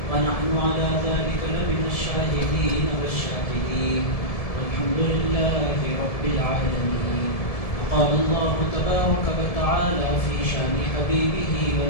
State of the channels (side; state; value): right; late; 1.7 ms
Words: ونحن على ذلك لمن الشاهدين والشاكرين والحمد لله رب العالمين. قال الله تبارك وتعالى في شان حبيبه